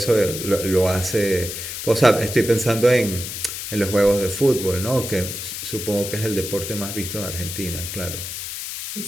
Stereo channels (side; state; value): left; noise; hiss, 7 dB below the sound